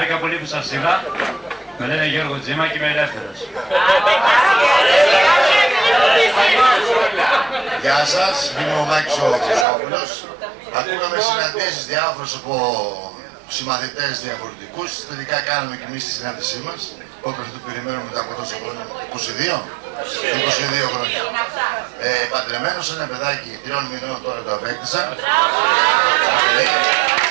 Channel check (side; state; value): left; drops out; at 9.7 s